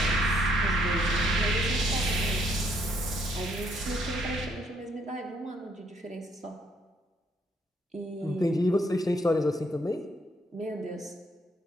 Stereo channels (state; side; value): normal; both; correlation 0.69